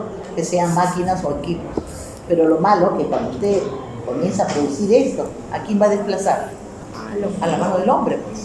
que sean máquinas o equipos. Pero lo malo es que cuando usted comienza a producir esto, ¿a quién va a desplazar? A la mano del hombre,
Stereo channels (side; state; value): both; identical; correlation 1.00